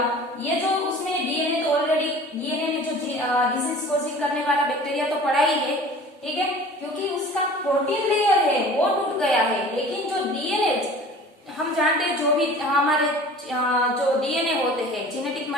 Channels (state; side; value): normal; both; correlation 0.43